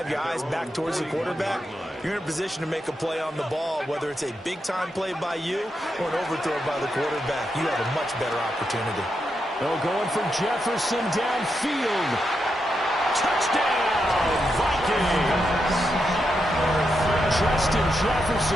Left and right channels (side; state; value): both; normal; correlation 0.84